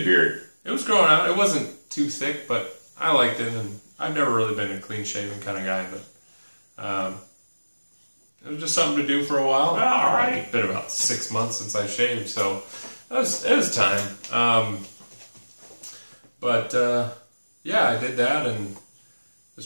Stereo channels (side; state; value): both; inverted; correlation -1.00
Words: beard. It was growing out. It wasn't too thick, but I liked it, and I've never really been a clean-shaven kind of guy, but it was just something to do for a while. All right. It's been about 6 months since I shaved, so it was time. Yeah, I did that, and